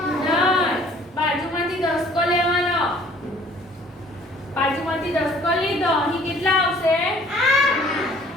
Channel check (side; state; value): both; normal; correlation 0.55